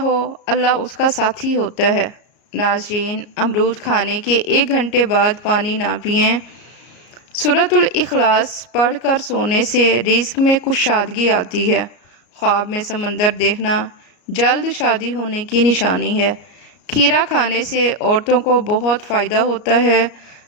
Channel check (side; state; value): right; late; 34 ms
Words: اللہ اس کا ساتھی ہوتا ہے۔ ناظرین، امرود کھانے کے 1 گھنٹے بعد پانی نہ پئیں۔ سورۃ الاخلاص پڑھ کر سونے سے رزق میں کشادگی آتی ہے۔ خواب میں سمندر دیکھنا جلد شادی ہونے کی نشانی ہے۔ کھیرا کھانے سے عورتوں کو بہت فائدہ ہوتا ہے،